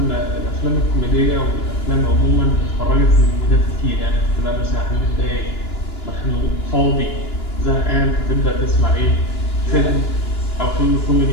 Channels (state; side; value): late; right; 2.9 ms